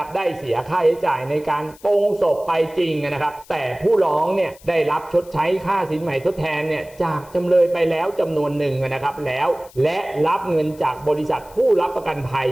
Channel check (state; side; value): noise; left; hiss, 24 dB below the sound